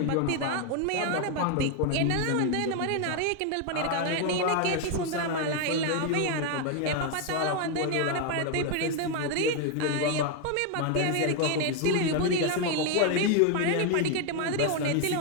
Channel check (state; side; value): different; both; correlation 0.01